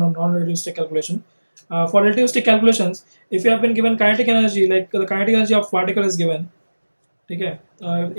non-relativistic calculation. For relativistic calculations, if you have been given kinetic energy, like the kinetic energy of particle is given, okay,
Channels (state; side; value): inverted; both; correlation -1.00